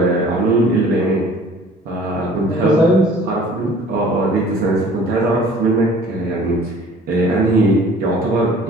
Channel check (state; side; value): normal; both; correlation 0.50